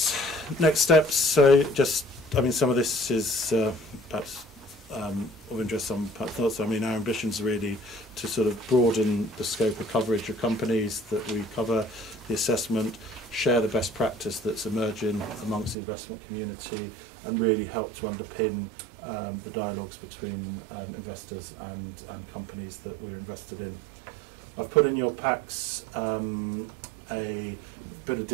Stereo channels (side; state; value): left; drops out; at 15.8 s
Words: steps, so just some of this is perhaps of interest, some thoughts. Our ambitions are really to sort of broaden the scope of coverage of companies that we cover, the assessment, share the best practice that's emerging amongst the investment community, and really help to underpin the dialogues between investors and companies that we're invested in. I've put in your packs a bit of